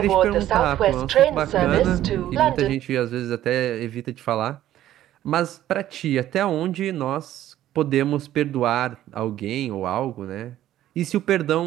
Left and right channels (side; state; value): left; quieter; 12.9 dB